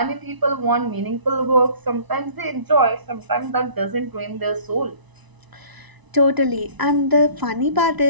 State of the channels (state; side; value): late; left; 1.0 ms